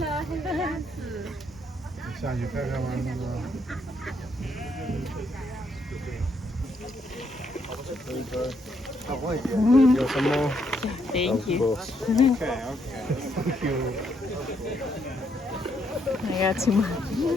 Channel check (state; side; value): normal; both; correlation 0.74